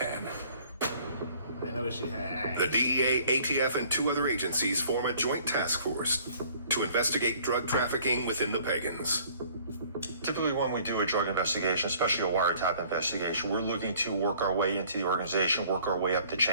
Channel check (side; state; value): both; inverted; correlation -0.56